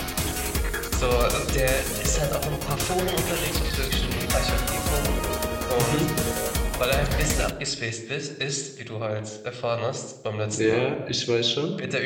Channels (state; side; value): identical; both; correlation 1.00